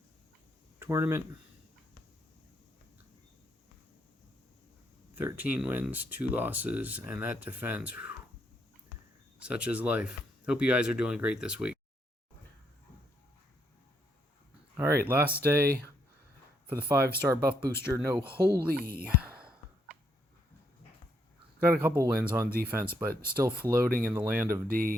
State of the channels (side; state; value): both; normal; correlation 0.75